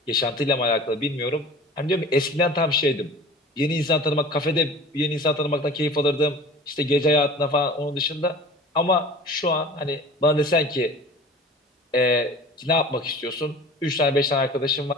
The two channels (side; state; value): both; normal; correlation 0.42